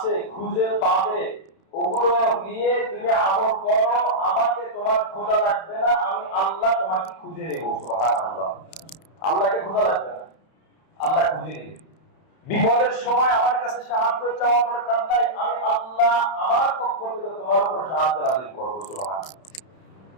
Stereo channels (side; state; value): right; late; 31 ms